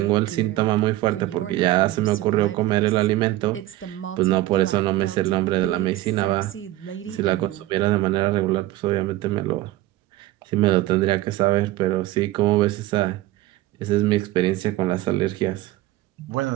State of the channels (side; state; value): left; quieter; 16.4 dB